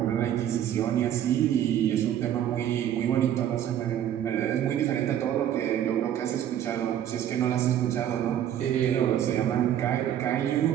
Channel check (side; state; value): left; quieter; 10.6 dB